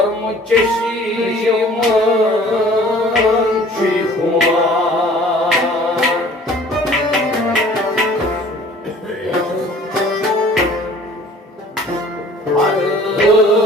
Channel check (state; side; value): normal; both; correlation 0.50